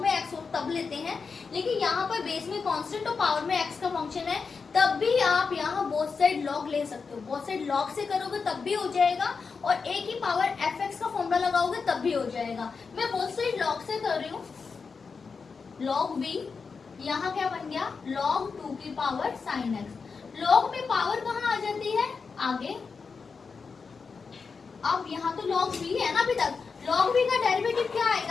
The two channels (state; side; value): quieter; right; 5.1 dB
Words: में x हो तब लेते हैं, लेकिन यहाँ पर बेस में कांस्टेंट और पावर में x का फंक्शन है, तब भी आप यहाँ बोथ साइड लॉग ले सकते हो। बोथ साइड लॉग से करोगे तब भी हो जाएगा, और a की पावर fx का फॉर्मूला लगाओगे तब भी हो जाएगा। मैं बोथ साइड लॉग से कर रही हूँ, log v, यहाँ क्या बन गया, log 2 की पावर sin x। log में पावर कहाँ आ जाती है, आगे। अब यहाँ तो log v है ना अभी तक, log v का डेरिवेटिव क्या